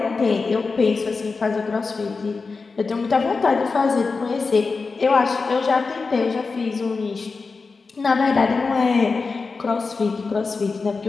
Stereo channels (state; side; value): quieter; right; 4.4 dB